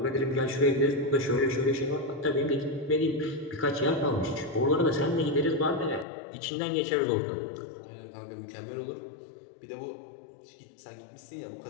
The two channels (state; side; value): drops out; right; at 6.1 s